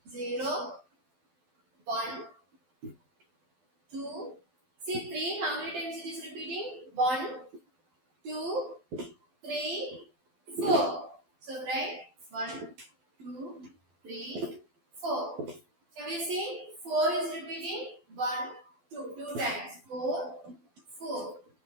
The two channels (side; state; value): left; late; 12 ms